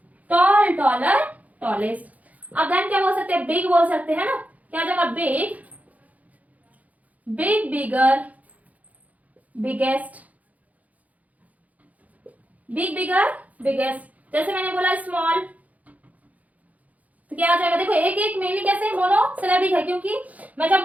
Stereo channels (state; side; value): late; left; 0.074 ms